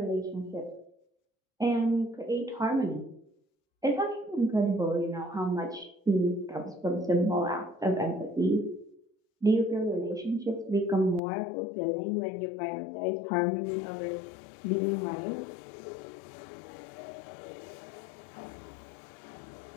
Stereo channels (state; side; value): drops out; right; at 11.2 s